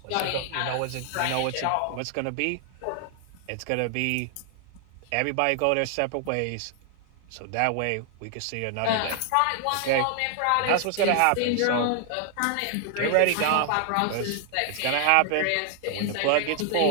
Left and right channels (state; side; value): different; both; correlation 0.00